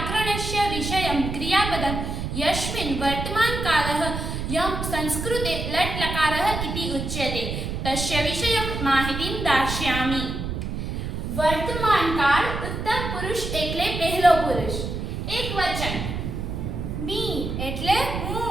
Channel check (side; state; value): right; noise; rumble, 4 dB below the sound